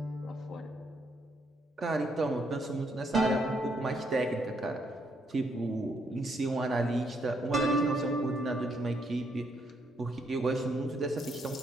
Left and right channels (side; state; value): both; normal; correlation 0.74